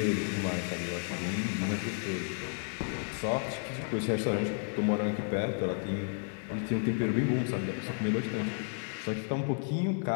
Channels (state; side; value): silent; right; 56 dB below the other